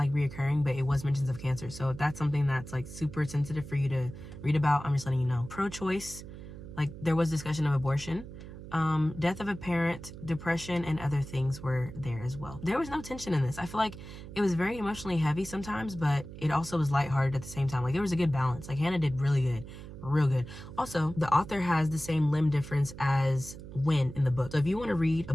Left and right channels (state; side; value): noise; right; hum, 13 dB below the sound